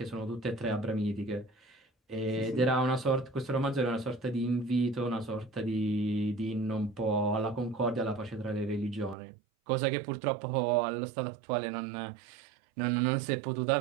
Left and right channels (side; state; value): left; drops out; at 9.2 s